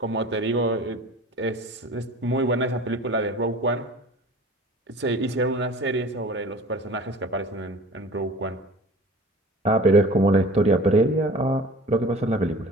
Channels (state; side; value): normal; both; correlation 0.43